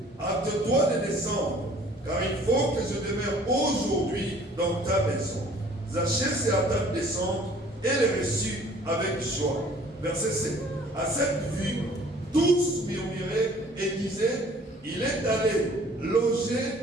hâte-toi de descendre, car il faut que je demeure aujourd'hui dans ta maison. Zachée se hâta de descendre et le reçut avec joie. Verset 7. À cette vue, tous murmuraient et disaient, il est allé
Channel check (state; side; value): normal; both; correlation 0.54